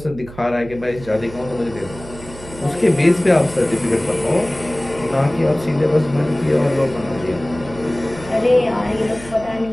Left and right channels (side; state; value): right; noise; hum, 16 dB below the sound